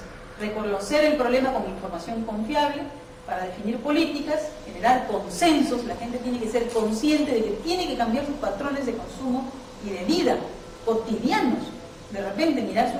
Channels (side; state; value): both; identical; correlation 1.00